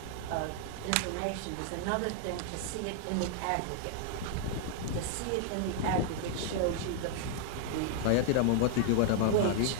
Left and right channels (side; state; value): both; different; correlation 0.00